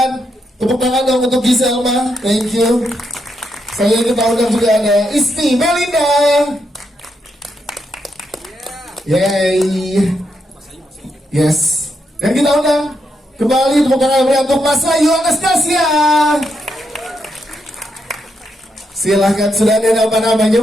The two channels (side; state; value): both; normal; correlation 0.81